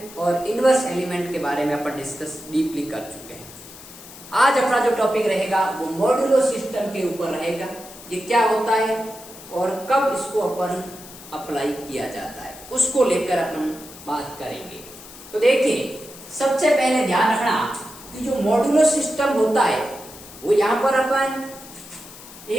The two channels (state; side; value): noise; left; hiss, 17 dB below the sound